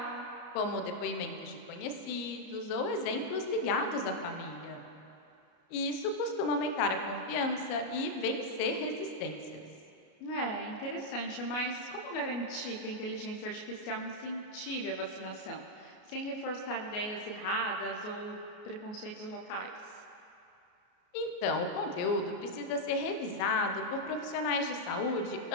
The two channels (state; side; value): late; right; 34 ms